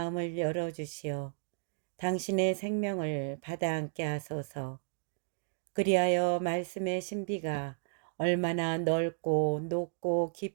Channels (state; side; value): silent; left; digital silence